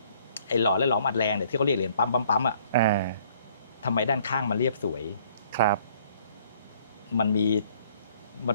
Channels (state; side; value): inverted; both; correlation -0.61